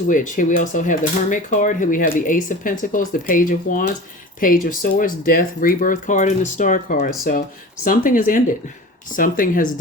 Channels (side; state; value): both; normal; correlation 0.36